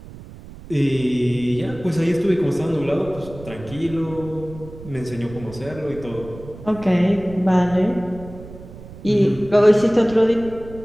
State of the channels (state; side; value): noise; right; rumble, 16 dB below the sound